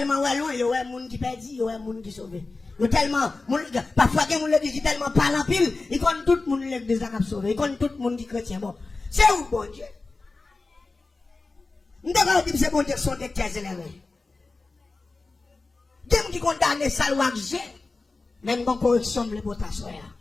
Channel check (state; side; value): quieter; right; 3.6 dB